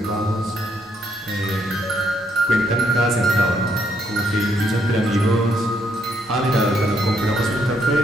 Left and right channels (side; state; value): both; normal; correlation 0.73